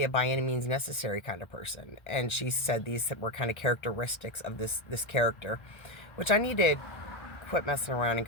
a by any means necessary kind of person. And she said these were kind of characteristics of this character, which I needed quit messing around and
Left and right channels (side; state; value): right; late; 1.4 ms